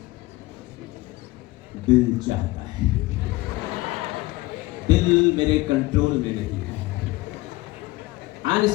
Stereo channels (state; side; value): quieter; right; 20.3 dB